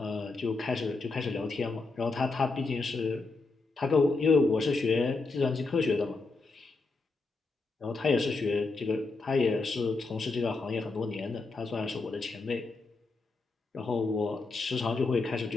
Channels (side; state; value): right; quieter; 3.7 dB